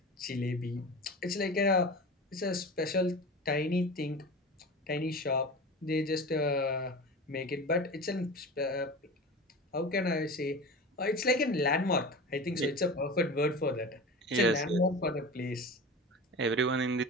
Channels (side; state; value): both; normal; correlation 0.31